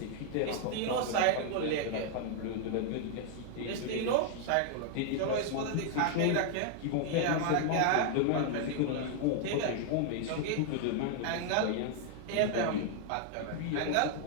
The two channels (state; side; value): different; both; correlation 0.00